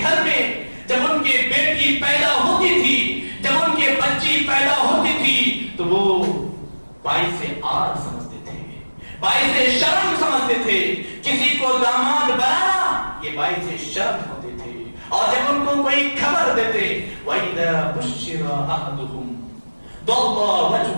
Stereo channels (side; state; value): both; inverted; correlation -1.00